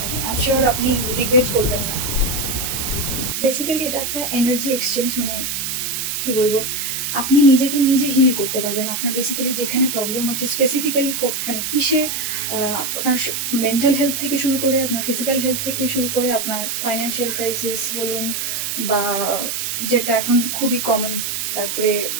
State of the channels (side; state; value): right; noise; hiss, 2 dB below the sound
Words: আমি শিওর আপনি রিগ্রেট করবেন না। বেসিক্যালি এটা একটা এনার্জি এক্সচেঞ্জ, মানে কি বলবো, আপনি নিজেকে নিজে হিল করতে পারবেন। আপনার বেসিক্যালি যেখানে প্রবলেম হচ্ছে স্পেসিফিক্যালি মানে কিসে, আপনার মেন্টাল হেলথ থেকে শুরু করে আপনার ফিজিক্যাল হেলথ থেকে শুরু করে আপনার ফাইন্যান্সিয়াল ক্রাইসিস বলুন, বা যেটা এখন খুবই কমন, তারপরে